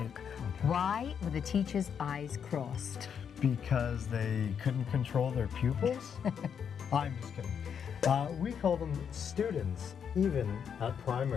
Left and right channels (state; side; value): quieter; right; 7.6 dB